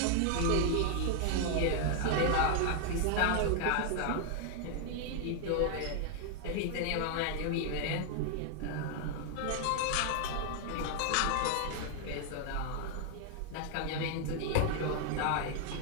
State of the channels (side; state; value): both; different; correlation 0.00